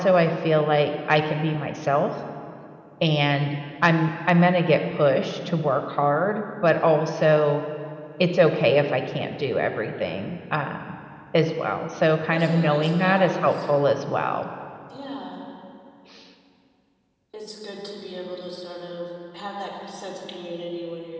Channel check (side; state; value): both; identical; correlation 1.00